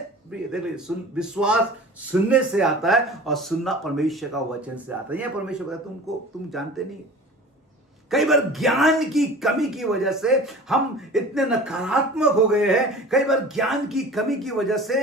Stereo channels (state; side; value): normal; both; correlation 0.40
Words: देखिए, विश्वास सुनने से आता है और सुनना परमेश्वर का वचन से आता है। यह परमेश्वर कहता है तुम जानते नहीं, कई बार ज्ञान की कमी की वजह से हम इतने नकारात्मक हो गए हैं। कई बार ज्ञान की कमी की वजह